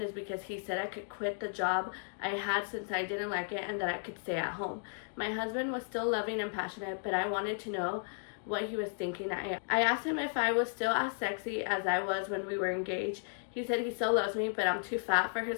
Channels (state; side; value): silent; right; digital silence